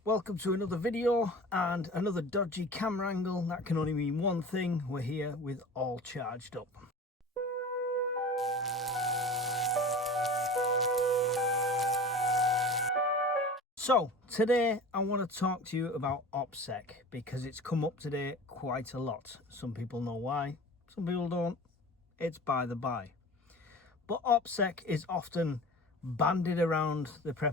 Welcome to another video and another dodgy camera angle. That can only mean one thing: we're here with all charged up. So today I want to talk to you about OPSEC because it's come up today quite a lot. Some people know why, some people don't. It's by the by. But OPSEC is often bandied around the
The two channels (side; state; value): both; normal; correlation 0.37